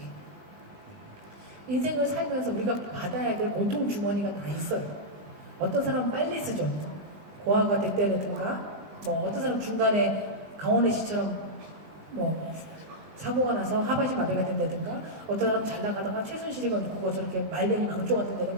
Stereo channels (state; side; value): late; left; 20 ms